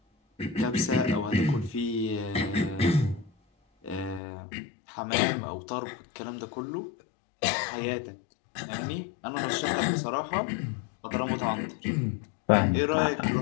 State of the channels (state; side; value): drops out; right; at 4.2 s